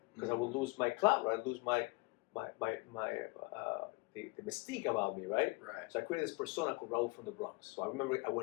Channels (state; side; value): quieter; right; 26.0 dB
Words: because I would lose my clout, right? I'd lose the mystique about me, right? Right. So I created this persona called Raul from the Bronx. So I remember I